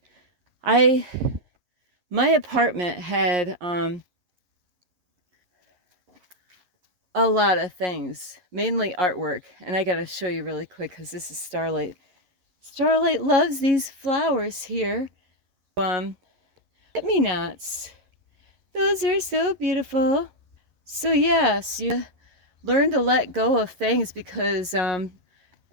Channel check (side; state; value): left; late; 11 ms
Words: My apartment had a lot of things, mainly artwork. And I got to show you really quick because this is Starlight. Starlight loves these flowers here. Forget-me-nots. Those are so beautiful. So yes, you learn to let go of things, because in